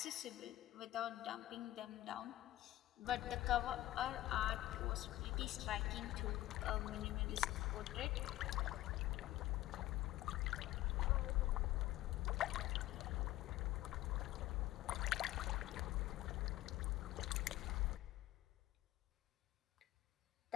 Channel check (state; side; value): quieter; right; 15.5 dB